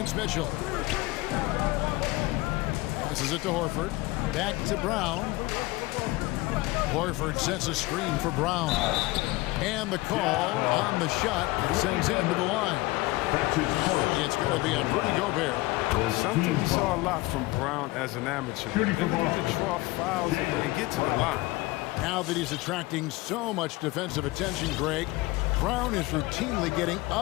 Mitchell. Passes it to Horford. Back to Brown. Horford sets a screen for Brown. And the call on the shot sends him to the line. It's going to be on Rudy Gobert. Something we saw a lot from Brown as an amateur. The ability to draw fouls and get to the line. Now that he's attracting so much defensive attention, Greg, Brown is routinely getting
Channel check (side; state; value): right; quieter; 20.7 dB